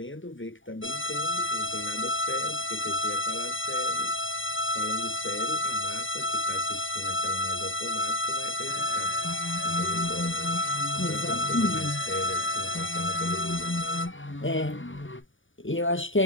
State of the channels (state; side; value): late; right; 0.57 ms